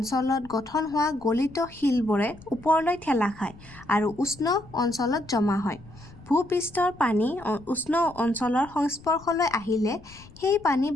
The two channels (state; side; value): noise; left; rumble, 22 dB below the sound